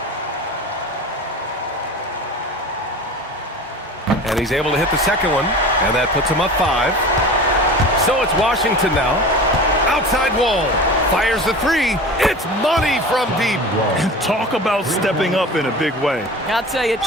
And he's able to hit the second one, and that puts him up 5. So it's Washington now. Outside wall. Fires the three. It's money from deep. Talk about stepping up in a big way. I'll tell you, it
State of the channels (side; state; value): both; normal; correlation 0.35